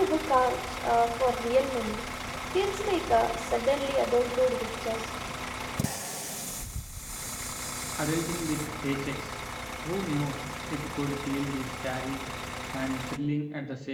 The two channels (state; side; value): identical; both; correlation 1.00